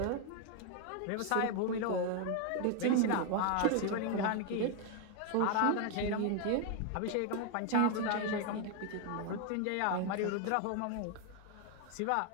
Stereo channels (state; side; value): different; both; correlation 0.01